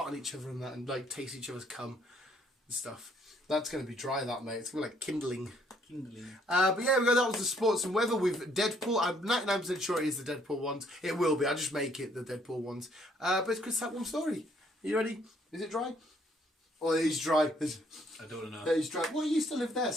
on each other and that, and like taste each other's cum and stuff. That's going to be dry, that, mate. It's going to be like kindling. But yeah, that was the sports and weather with Deadpool. I'm 99% sure it is the Deadpool ones. It will be. I'll just make it the Deadpool ones. But it's Chris, that one story. Are you ready? Is it dry? Oh, it is dry. I don't know. It is dry. Well, it used to live there.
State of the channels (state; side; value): normal; both; correlation 0.65